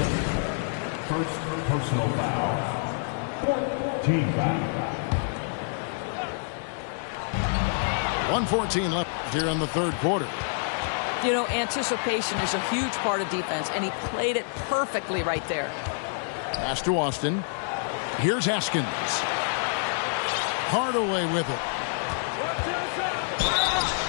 First personal foul. 4th team foul. 1:14 left here in the third quarter. You know, anticipation is a huge part of defense, and he played it perfectly right there. Pass to Austin. Here's Haskins. Hardaway with it.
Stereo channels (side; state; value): right; silent; digital silence